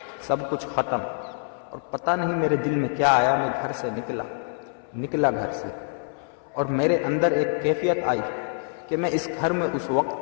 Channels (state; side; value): silent; right; 61 dB below the other